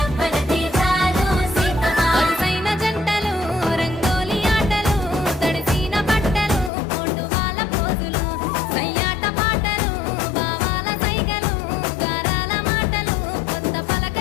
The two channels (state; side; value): drops out; right; at 6.7 s